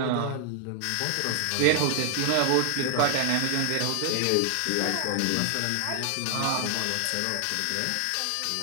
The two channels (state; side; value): different; both; correlation 0.00